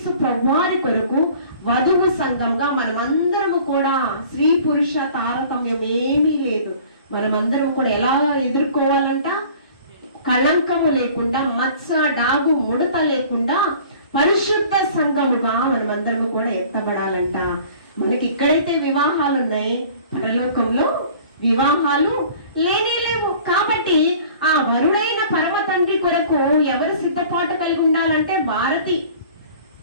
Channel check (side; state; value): both; inverted; correlation -0.48